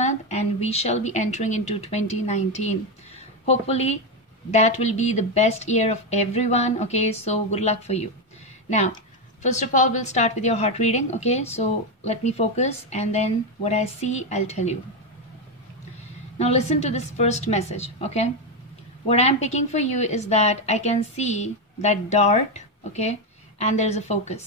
and we shall be entering into 2019. Hopefully that will be the best year of everyone. Okay, so good luck for you. Now, first of all, we'll start with your heart reading. Okay, so let me focus and then what I see, I'll tell you. Now listen to this first message. Okay, what I'm picking for you is that I can see that dart, okay, and there's a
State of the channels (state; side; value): normal; both; correlation 0.09